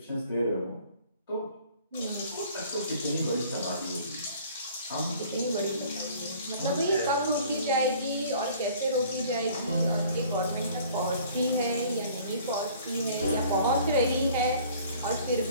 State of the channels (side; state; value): both; inverted; correlation -0.52